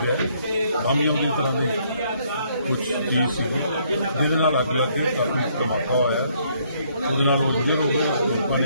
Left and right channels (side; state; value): both; inverted; correlation -0.68